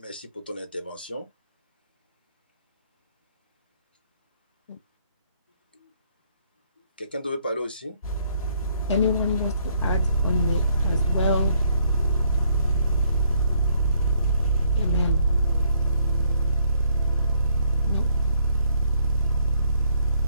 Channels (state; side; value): inverted; both; correlation -0.68